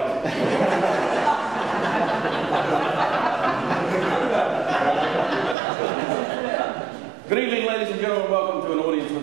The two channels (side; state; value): left; drops out; at 5.6 s